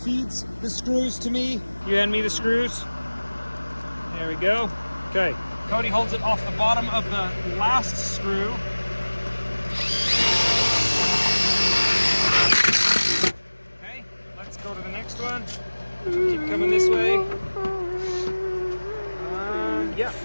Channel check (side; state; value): both; inverted; correlation -1.00